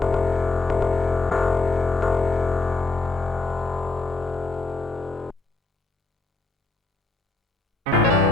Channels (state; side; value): quieter; right; 3.3 dB